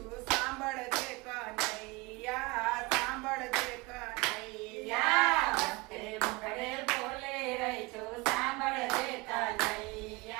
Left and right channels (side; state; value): left; quieter; 24.8 dB